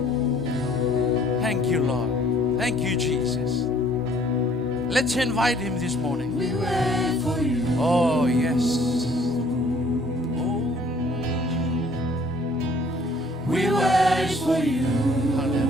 Thank you, Lord. Thank you, Jesus. Let's invite Him this morning. We wait for you. Oh, yes. Oh, We wait for you.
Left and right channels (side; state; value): both; normal; correlation 0.59